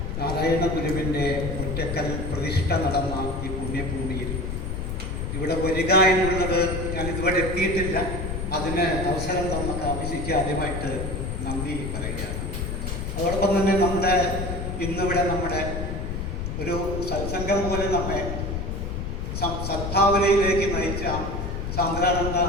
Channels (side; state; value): left; noise; rumble, 4 dB below the sound